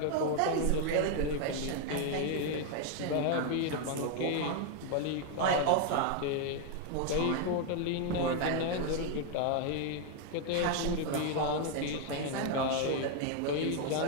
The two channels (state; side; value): different; both; correlation 0.00